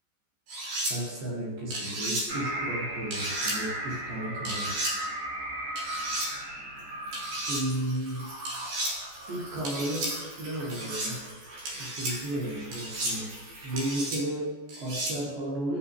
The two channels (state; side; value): late; left; 14 ms